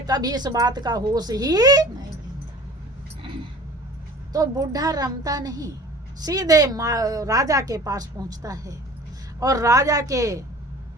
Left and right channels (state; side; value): normal; both; correlation 0.44